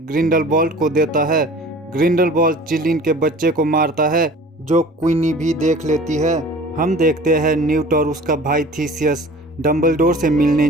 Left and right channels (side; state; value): both; normal; correlation 0.44